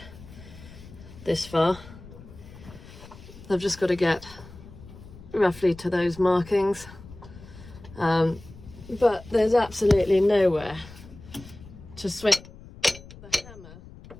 this far. I've just got to get roughly to those markings. But there's absolutely nowhere to swing the hammer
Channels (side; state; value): left; noise; rumble, 18 dB below the sound